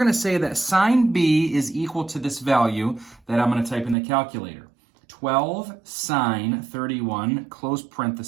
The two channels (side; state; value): left; drops out; at 4.0 s